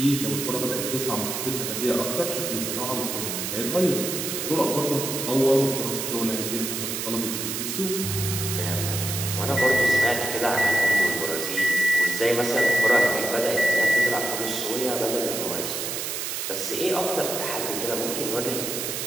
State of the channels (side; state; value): right; noise; hiss, 3 dB below the sound